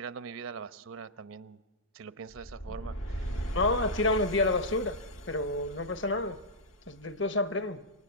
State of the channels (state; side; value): normal; both; correlation -0.09